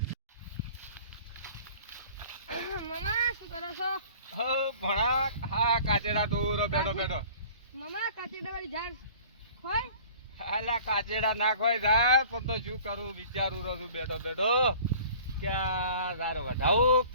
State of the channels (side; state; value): both; inverted; correlation -0.47